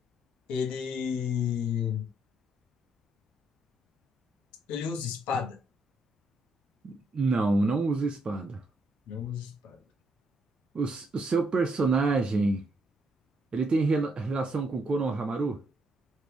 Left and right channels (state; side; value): normal; both; correlation 0.74